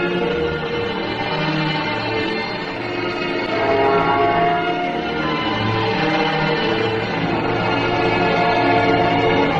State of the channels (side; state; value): both; identical; correlation 1.00